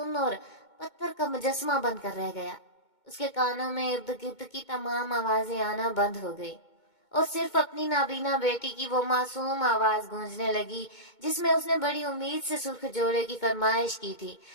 اور پتھر کا مجسمہ بن کر رہ گیا۔ اس کے کانوں میں ارد گرد کی تمام آوازیں آنا بند ہو گئی، اور صرف اپنی نابینا بیٹی کی وہ معصوم آواز گونجنے لگی جس میں اس نے بڑی امید سے سرخ جوڑے کی فرمائش کی تھی،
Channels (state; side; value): late; right; 2.2 ms